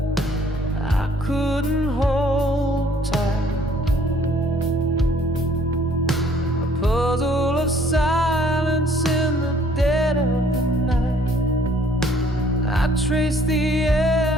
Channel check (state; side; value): normal; both; correlation 0.60